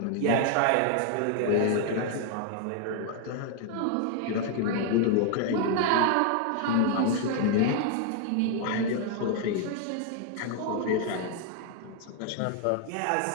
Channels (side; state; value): both; different; correlation 0.00